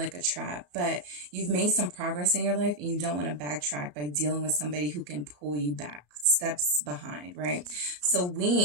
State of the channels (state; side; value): late; left; 34 ms